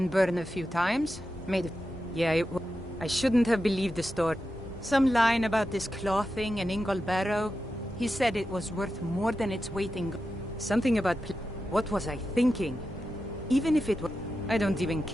burned a few times. Yeah, I shouldn't have believed the story. Some line about this clothing and Ingol Barrow. He said it was worth more than its weight in gold. Something about what was I thinking? Even if it was, I don't even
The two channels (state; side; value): normal; both; correlation 0.90